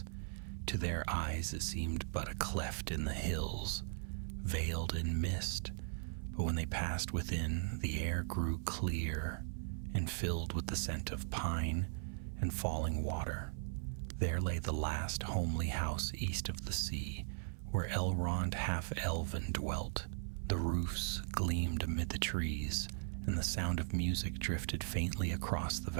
To their eyes it seemed but a cleft in the hills, veiled in mist, but when they passed within, the air grew clear and filled with the scent of pine and falling water. There lay the last homely house east of the sea, where Elrond half-elven dwelt. The roofs gleamed amid the trees, and the sound of music drifted faintly across the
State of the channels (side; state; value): left; silent; 52 dB below the other